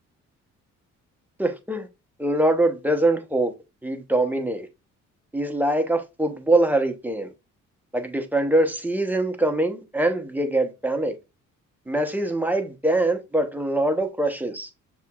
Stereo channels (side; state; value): both; normal; correlation 0.71